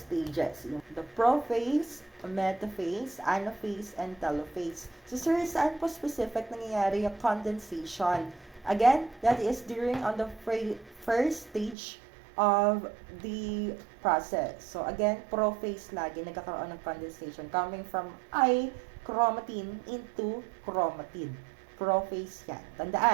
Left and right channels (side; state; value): left; drops out; at 11.8 s